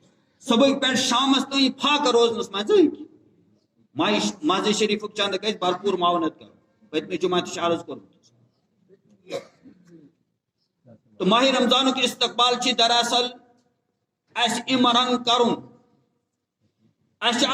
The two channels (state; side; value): identical; both; correlation 1.00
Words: صبح پہ شامس تین فاقہ روزنس مز ماضی شریف چند گھر بھرپور معاونت کر پتمہ جمعہ تہ عرض کورمت تو ماہ رمضان کے استقبال دراصل اس امرنگ کرن اس